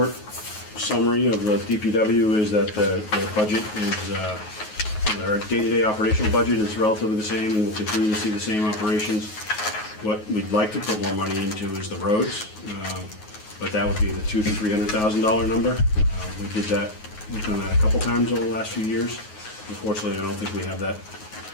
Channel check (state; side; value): late; right; 9.4 ms